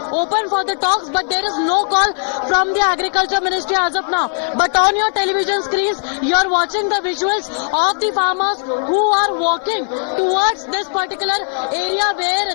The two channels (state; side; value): silent; right; 58 dB below the other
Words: open for the talks, but there is no call from the Agriculture Ministry as of now. But on your television screens, you are watching the visuals of the farmers who are walking towards this particular area where